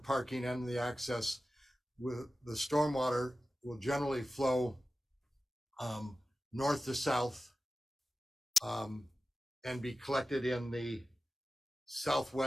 and the access, with the stormwater will generally flow north to south and be collected in the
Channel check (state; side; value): normal; both; correlation 0.94